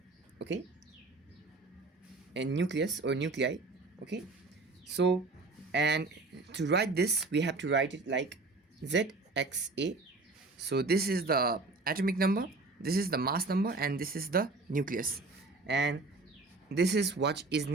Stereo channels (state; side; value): quieter; left; 3.6 dB